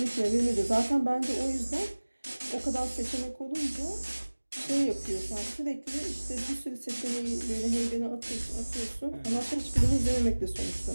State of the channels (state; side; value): inverted; both; correlation -1.00